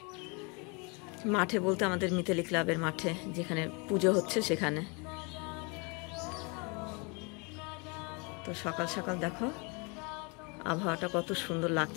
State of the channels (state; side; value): quieter; right; 31.3 dB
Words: মাঠে বলতে আমাদের মিতালি ক্লাবের মাঠে, যেখানে পুজো হচ্ছে সেখানে। তো সকাল সকাল দেখো আবহাওয়াটা কত সুন্দর